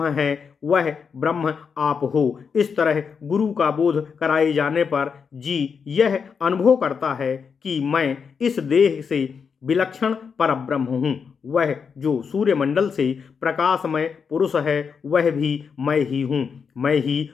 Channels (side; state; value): right; quieter; 6.1 dB